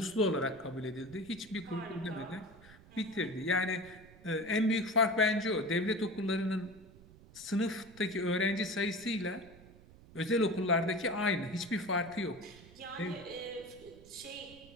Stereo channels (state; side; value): noise; right; rumble, 21 dB below the sound